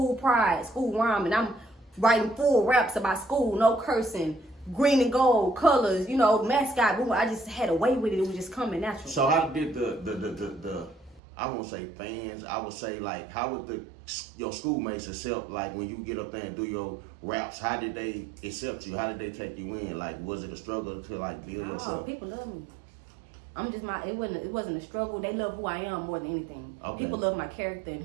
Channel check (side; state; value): left; drops out; at 11.2 s